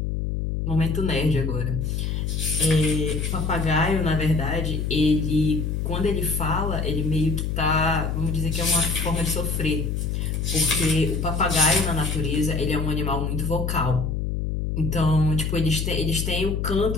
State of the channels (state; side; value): noise; left; hum, 1 dB below the sound